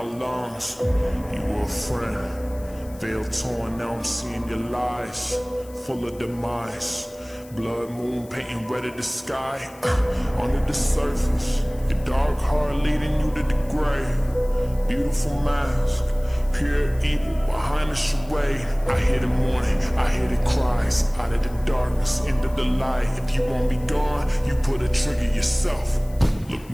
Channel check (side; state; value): left; noise; hiss, 23 dB below the sound